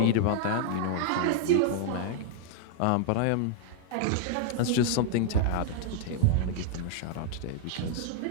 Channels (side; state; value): both; different; correlation 0.00